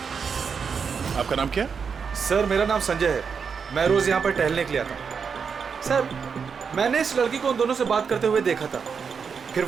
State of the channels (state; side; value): quieter; left; 6.1 dB